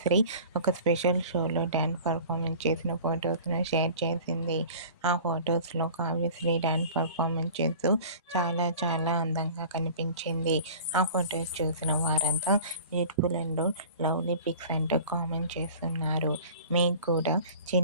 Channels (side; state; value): both; inverted; correlation -0.43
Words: ఒక స్పెషల్ షోలో డ్యాన్స్ పర్ఫార్మెన్స్ చేసిన ఫొటోస్ను షేర్ చేసింది. ఆ ఫొటోస్లో కావ్యశ్రీ డ్యాన్స్ పర్ఫార్మెన్స్ చేస్తూ చాలా అందంగా కనిపించింది. ఆ ఫొటోస్ చూసిన వారంతా బ్యూటిఫుల్ అండ్ లవ్లీ పిక్స్ అంటూ కామెంట్ చేస్తున్నారు. మీకు కూడా